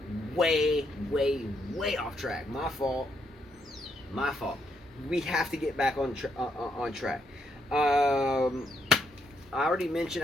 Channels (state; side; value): normal; both; correlation 0.77